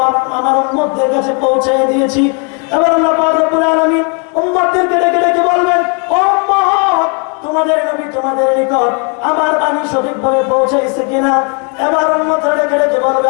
আমার উম্মতদের কাছে পৌঁছে দিয়েছি। এবার আল্লাহ পাক রব্বুল আলামিন উম্মতদেরকে ডেকে ডেকে বলবেন, ও উম্মত, তোমাদের নবী তোমাদের নিকট আমার বাণী সঠিকভাবে পৌঁছাইছে কিনা? এবার উম্মতরা ডেকে ডেকে বলবে,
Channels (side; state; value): right; quieter; 36.6 dB